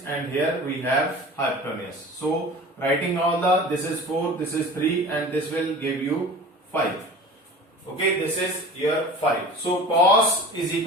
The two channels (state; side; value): normal; both; correlation 0.39